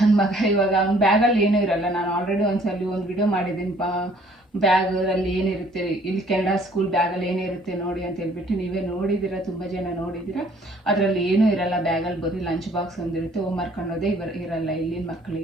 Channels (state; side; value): normal; both; correlation 0.59